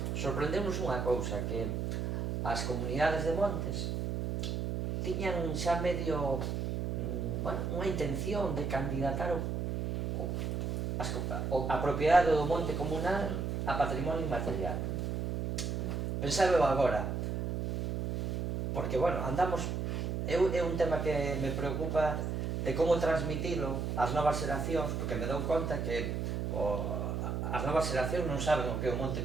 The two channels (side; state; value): right; noise; hum, 1 dB below the sound